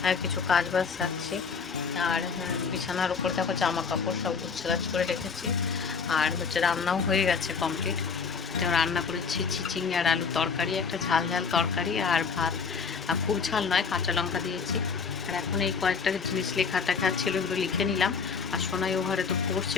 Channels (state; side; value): quieter; right; 5.6 dB